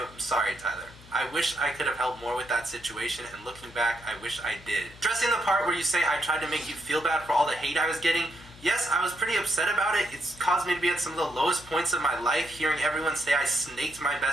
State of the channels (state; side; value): noise; left; hum, 21 dB below the sound